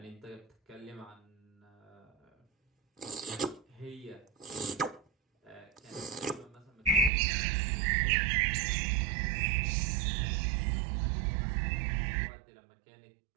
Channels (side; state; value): left; drops out; at 7.1 s